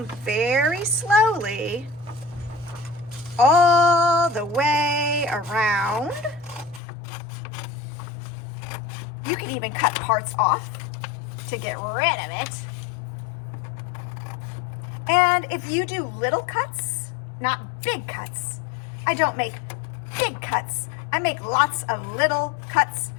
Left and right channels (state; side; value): drops out; right; at 6.8 s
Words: very slowly all the way around. You can even cut parts off to get rid of it. And if you do little cuts, not big cuts, I don't make big cuts. I make lots of little cuts,